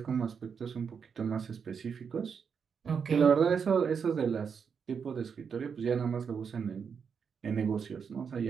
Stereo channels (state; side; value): quieter; left; 6.5 dB